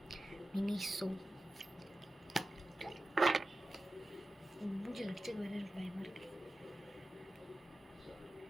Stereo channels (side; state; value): both; normal; correlation 0.93